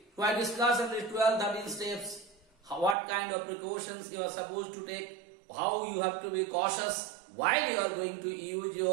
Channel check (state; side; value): drops out; left; at 3.0 s